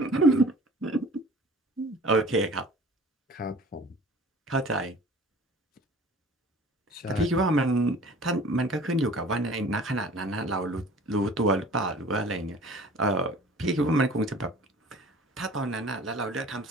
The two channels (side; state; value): both; normal; correlation 0.47